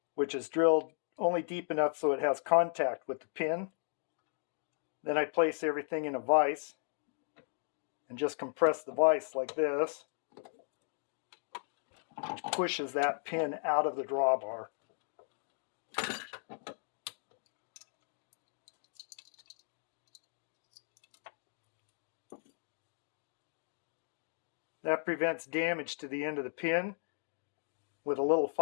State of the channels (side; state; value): right; silent; digital silence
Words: which is drilled only deep enough so it has contact with the pin. Then I place everything in a vise and just compress the vise like this, which pushes that pin out of the drawbar. That prevents damage to the end of the pin. With a little